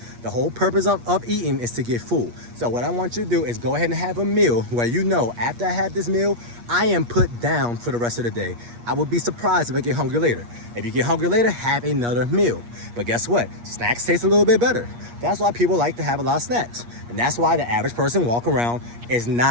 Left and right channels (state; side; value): late; left; 8.4 ms